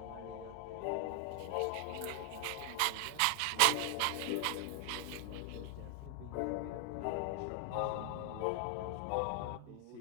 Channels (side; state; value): both; different; correlation 0.00